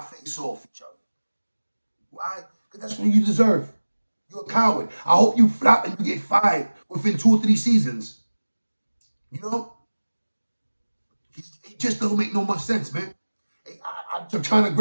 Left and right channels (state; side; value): inverted; both; correlation -1.00